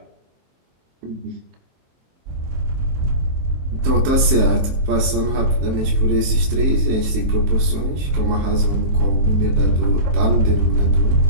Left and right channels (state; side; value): late; left; 23 ms